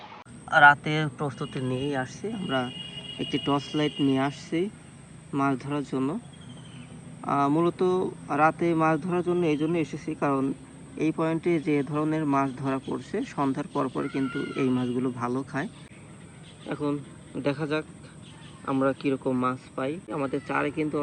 রাতে প্রস্তুতি নিয়েই আসছি আমরা, একটি টর্চ লাইট নিয়ে আসছি মাছ ধরার জন্য। মূলত রাতে মাছ ধরার জন্য এই জন্য এসেছি, কারণ এই পয়েন্টে যে ধরনের মাছ ধরা পড়ছে সন্ধ্যার পর কিন্তু এই মাছগুলো ভালো খায়। এখন দেখা যাক আমরা কিরকম মাছ পাই। আমাদের চারে কিন্তু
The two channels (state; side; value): identical; both; correlation 1.00